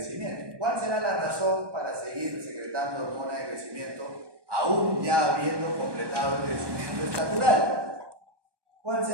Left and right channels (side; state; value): left; late; 1.2 ms